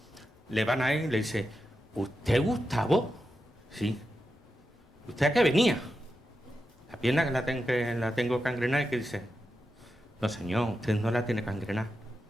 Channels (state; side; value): normal; both; correlation 0.89